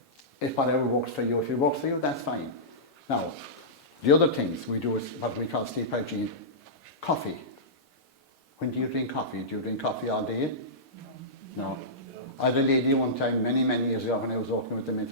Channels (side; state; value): both; normal; correlation -0.17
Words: if whatever works for you, if it works for you, that's fine. Now, the other things we do is what we call sleep hygiene. Coffee. When do you drink coffee? Do you drink coffee all day? No. I had a lady one time, many years ago, when I was working with the